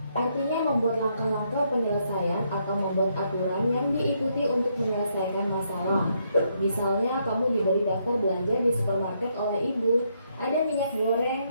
Artinya membuat langkah-langkah penyelesaian atau membuat aturan yang diikuti untuk menyelesaikan masalah. Misalnya kamu diberi daftar belanja di supermarket oleh ibu. Ada minyak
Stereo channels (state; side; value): inverted; both; correlation -0.75